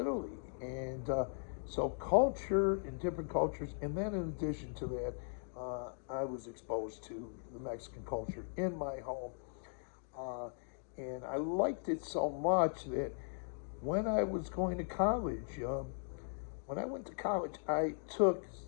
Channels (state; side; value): silent; right; digital silence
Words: and so culture and different cultures, and then in addition to that, I was exposed to the Mexican culture in my home, and I liked it so much that when I was going to college, when I went to college, I took